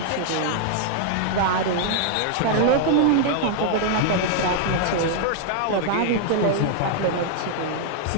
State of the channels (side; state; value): both; different; correlation 0.00